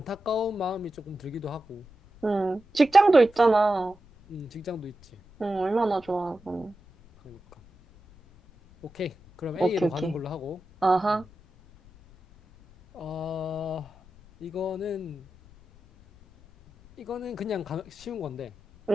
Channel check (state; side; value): noise; left; rumble, 25 dB below the sound